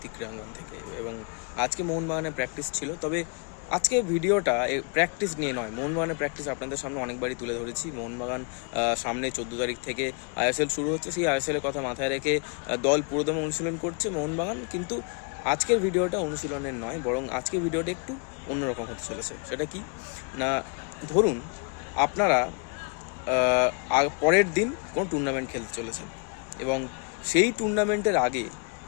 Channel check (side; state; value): right; quieter; 38.1 dB